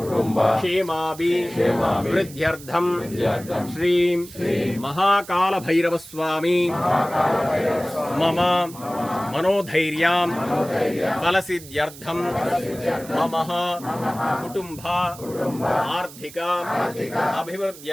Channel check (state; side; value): noise; right; hiss, 17 dB below the sound